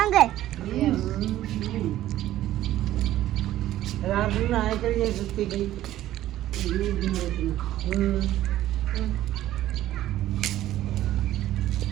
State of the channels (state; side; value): quieter; left; 13.8 dB